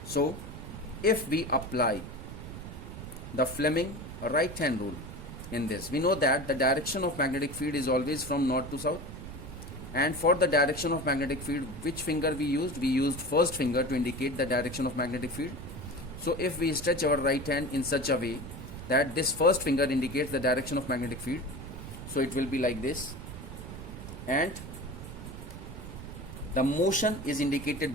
So if we apply the Fleming right hand rule in this, we know that the direction of magnetic field is always from north to south. And for the direction of magnetic field, which finger we used? We used first finger to indicate the direction of magnetic field. So if we stretch our right hand in such a way that this first finger indicates the direction of magnetic field, so it will be like this, and the motion is indicated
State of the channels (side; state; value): right; noise; rumble, 11 dB below the sound